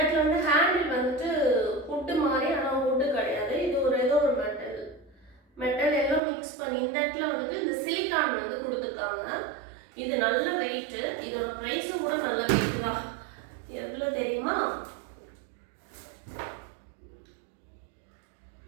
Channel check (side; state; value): left; drops out; at 6.2 s